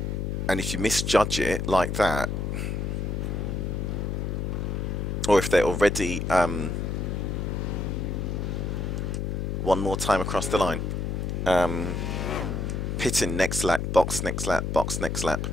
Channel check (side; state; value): left; noise; hum, 2 dB below the sound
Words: if you misjudge it like that, or if they're already one more time across the line, pitting next lap, box next lap, box next lap,